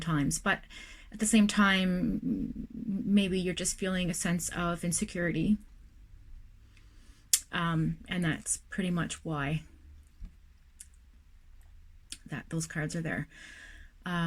but at the same time, maybe you're just feeling a sense of insecurity, and that's pretty much why those cards are there.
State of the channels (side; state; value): both; identical; correlation 1.00